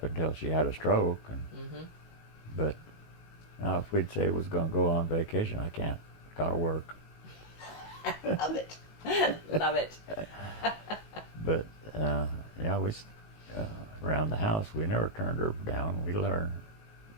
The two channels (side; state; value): right; late; 19 ms